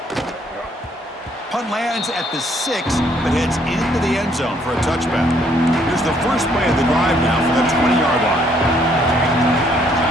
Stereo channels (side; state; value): both; normal; correlation 0.67